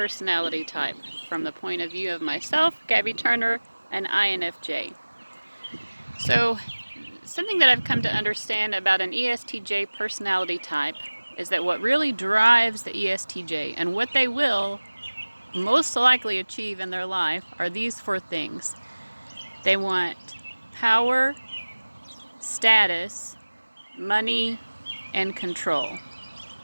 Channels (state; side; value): inverted; both; correlation -1.00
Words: type from the point of view of myself, Gabby Turner, and INFJ. So something that I've come to understand about an ESTJ personality type is that what really drives the ESTJ and what they will most likely achieve in their life are these four things. They want power, status, money, and control.